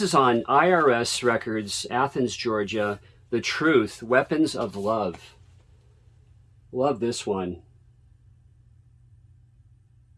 on IRS Records, Athens, Georgia. The Truth, Weapons of Love. Love this one.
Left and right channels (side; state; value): both; identical; correlation 1.00